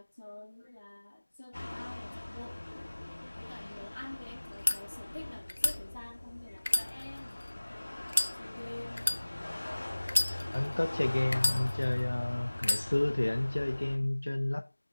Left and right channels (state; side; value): inverted; both; correlation -1.00